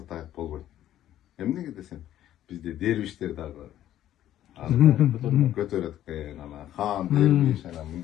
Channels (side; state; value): right; quieter; 12.4 dB